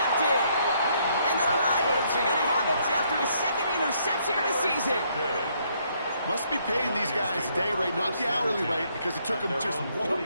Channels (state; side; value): inverted; both; correlation -0.70